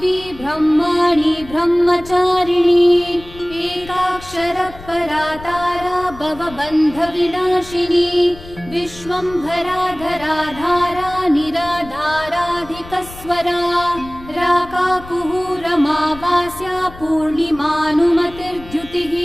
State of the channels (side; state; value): left; noise; rumble, 17 dB below the sound